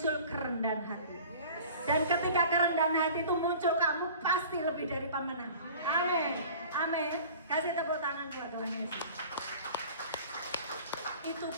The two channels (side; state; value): both; inverted; correlation -0.43